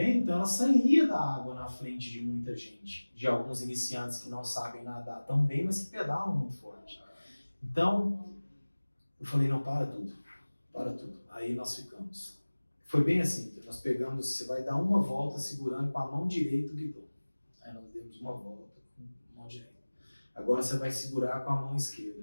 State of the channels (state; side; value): inverted; both; correlation -1.00